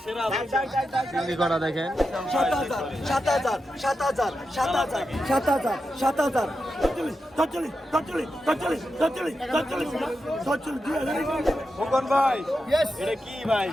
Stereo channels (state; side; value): normal; both; correlation 0.89